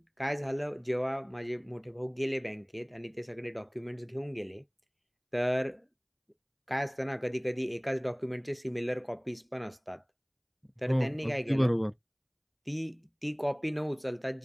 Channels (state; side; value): identical; both; correlation 1.00